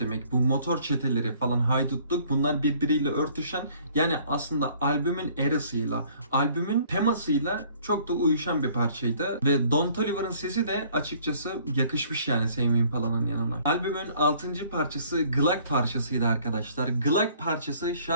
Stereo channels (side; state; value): both; inverted; correlation -0.58